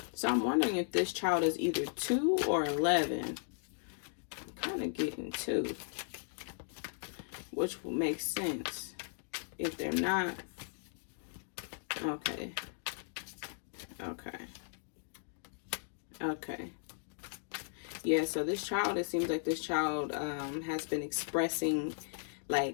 So I'm wondering if this child is either 2 or 11. I'm kind of getting 2, which will make sense. If they're not, okay. Yeah, so this child, it seems like this child has been expressing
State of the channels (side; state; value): right; silent; digital silence